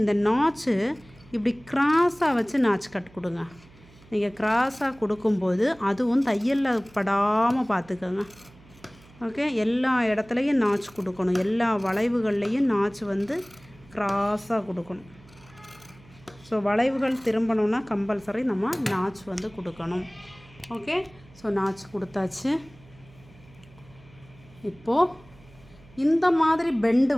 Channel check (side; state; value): right; noise; hum, 25 dB below the sound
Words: இந்த நாச்சு இப்படி கிராஸாக வச்சு நாச்சு கட் கொடுங்க. நீங்கள் கிராஸாக கொடுக்கும்போது அதுவும் தையலில் படாமல் பார்த்துக்கோங்க. ஓகே எல்லா இடத்துலையும் நாச்சு கொடுக்கணும். எல்லா வளைவுகள்லேயும் நாச்சு வந்து கிராஸாக கொடுக்கணும். ஸோ வளைவுகள் திரும்பணுன்னா கம்பல்சரி நம்ம நாச்சு வந்து கொடுக்கணும். ஓகே ஸோ நாச்சு கொடுத்தாச்சு. இப்போது இந்த மாதிரி பெண்டு